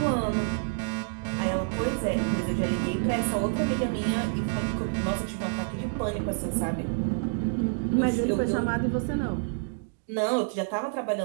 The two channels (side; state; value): left; silent; digital silence